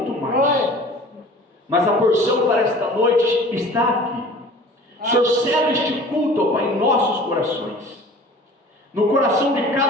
mais. Mas a porção para esta noite está aqui. O Senhor cela este culto, ó Pai, em nossos corações, no coração de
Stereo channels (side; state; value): both; normal; correlation 0.45